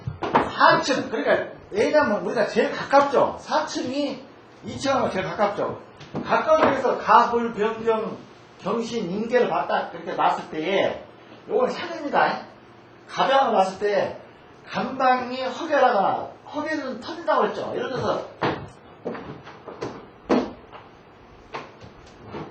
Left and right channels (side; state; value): both; identical; correlation 1.00